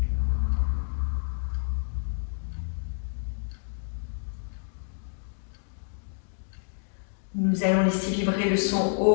Nous allons laisser vibrer le son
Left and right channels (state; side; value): silent; right; digital silence